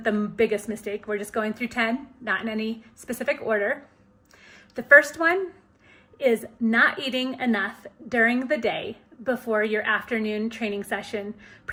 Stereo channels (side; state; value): both; identical; correlation 1.00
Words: the biggest mistake, we're just going through 10, not in any specific order. The first one is not eating enough during the day before your afternoon training session,